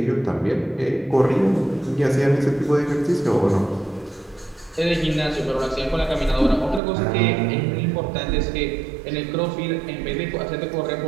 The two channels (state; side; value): drops out; left; at 6.8 s